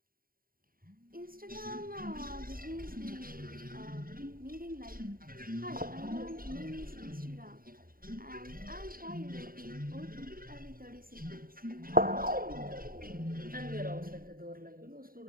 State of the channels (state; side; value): late; left; 0.42 ms